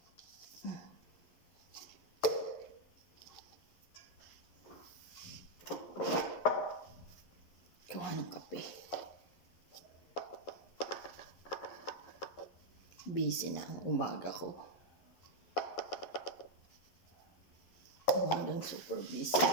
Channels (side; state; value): right; late; 11 ms